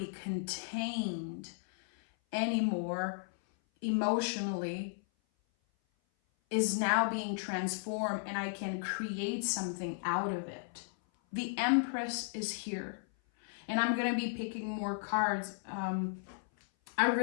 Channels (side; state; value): right; silent; 55 dB below the other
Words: contained anymore emotionally is now being transformed, and I can create something out of it. The Empress is here. And I'm going to be picking more cards. I